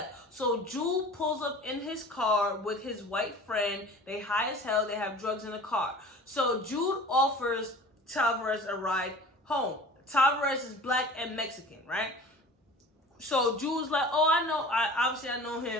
So Jude pulls up in his car with his white friend. They high as hell. They have drugs in the car. So Jude offers Tavares a ride home. Tavares is black and Mexican, right? So Jude's like, oh, I know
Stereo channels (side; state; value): both; normal; correlation 0.42